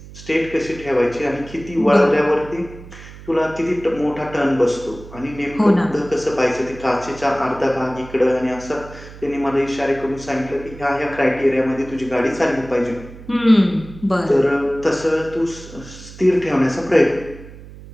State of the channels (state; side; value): noise; right; hum, 17 dB below the sound